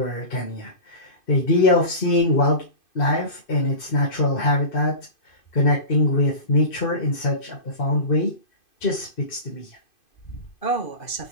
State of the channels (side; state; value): right; late; 2.5 ms